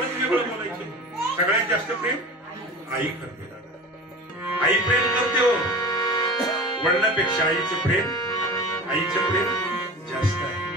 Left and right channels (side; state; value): both; normal; correlation 0.34